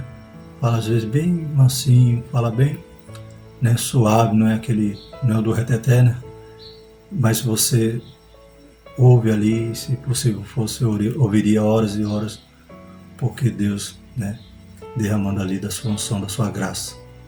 fala às vezes bem mansinho, fala bem, né, suave, não é o do reteté, né? Mas você ouve ali, se possível fosse, ouviria horas e horas, porque Deus, né, derramando ali da sua unção, da sua graça.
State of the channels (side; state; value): both; identical; correlation 1.00